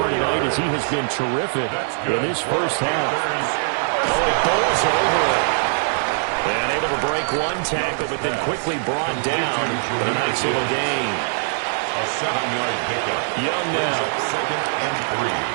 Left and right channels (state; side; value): silent; left; 64 dB below the other